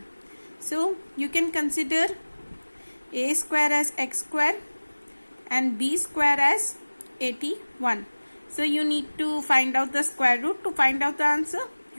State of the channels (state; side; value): inverted; both; correlation -1.00